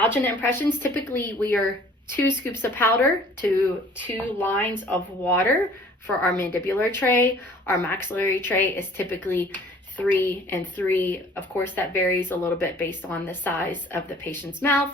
impressions, typically we are 2 scoops of powder to 2 lines of water for our mandibular tray. Our maxillary tray is typically 3 and 3. Of course, that varies a little bit based on the size of the patient's mouth.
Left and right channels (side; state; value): both; normal; correlation 0.53